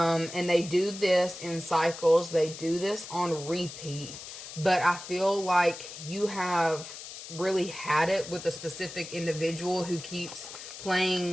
they do this in cycles. They do this on repeat. But I feel like you have really had it with a specific individual who keeps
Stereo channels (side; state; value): left; noise; hiss, 12 dB below the sound